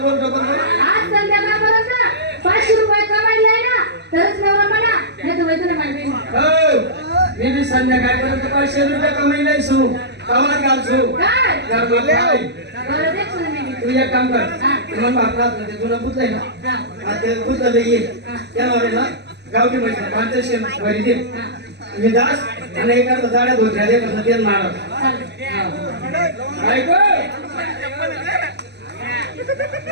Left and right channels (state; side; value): late; left; 0.50 ms